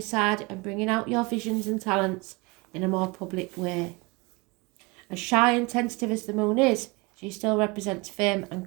side and bringing out your visions and talents in a more public way. As shy and tentative as the moon is, she still represents fame and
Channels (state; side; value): quieter; left; 26.2 dB